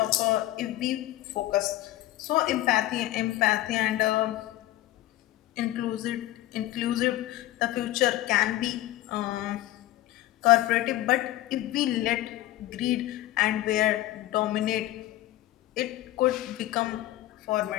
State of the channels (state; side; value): quieter; right; 15.7 dB